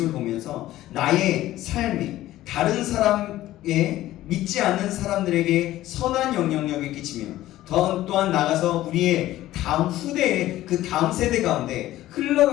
보면서 나의 삶이 다른 사람의 믿지 않는 사람들에게 선한 영향력을 끼치며 또한 나가서 우리의 다음 후대의 그 다음 세대 가운데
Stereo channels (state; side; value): quieter; right; 15.0 dB